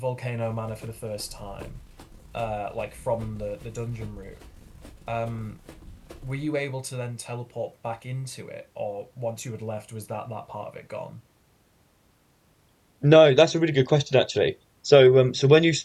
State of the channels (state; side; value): identical; both; correlation 1.00